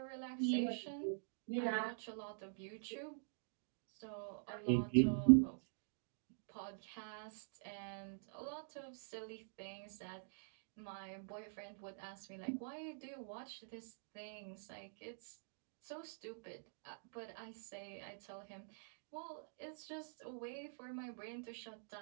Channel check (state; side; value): silent; left; digital silence